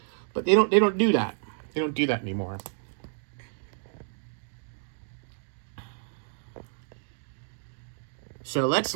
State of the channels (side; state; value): left; silent; digital silence